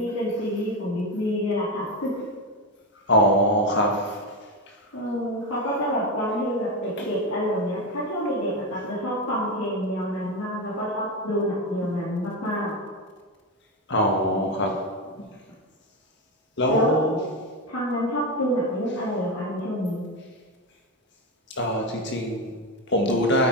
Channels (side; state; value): both; normal; correlation 0.14